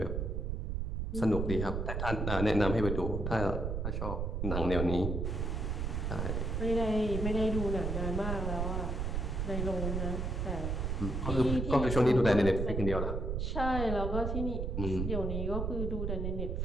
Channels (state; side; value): noise; right; rumble, 1 dB below the sound